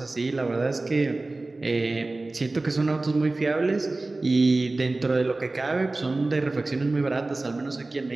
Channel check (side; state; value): left; quieter; 3.1 dB